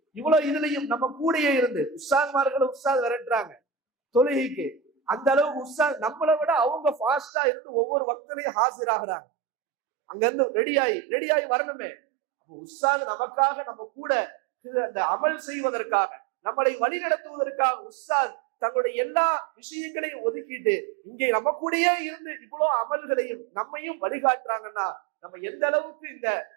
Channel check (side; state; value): left; drops out; at 7.3 s